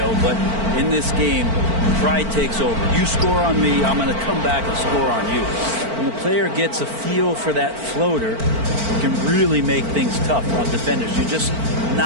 but in this game, pride takes over. You score on me, I'm going to come back and score on you. When the player gets a feel for that floater, it can really make things tough on defenders. You're just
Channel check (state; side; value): late; left; 4.4 ms